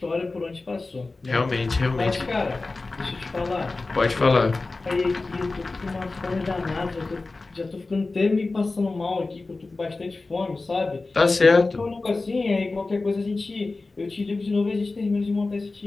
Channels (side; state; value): right; quieter; 3.5 dB